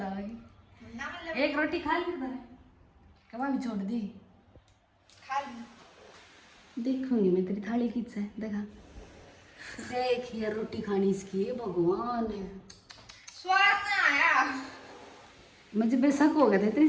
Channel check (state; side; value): identical; both; correlation 1.00